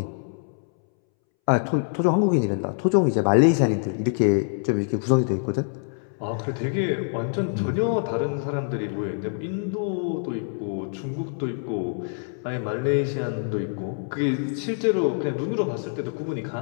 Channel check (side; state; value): right; silent; 62 dB below the other